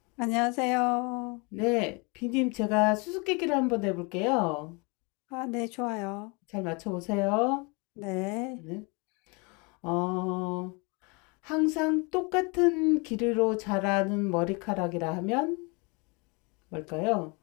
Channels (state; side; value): quieter; right; 30.5 dB